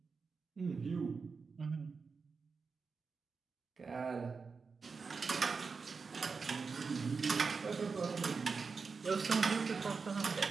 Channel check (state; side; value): quieter; left; 4.9 dB